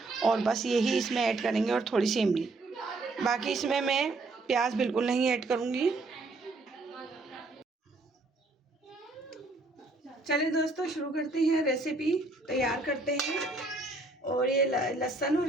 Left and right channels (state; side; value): quieter; left; 3.2 dB